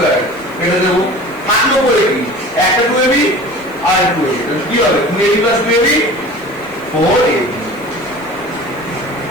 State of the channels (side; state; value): right; noise; hiss, 26 dB below the sound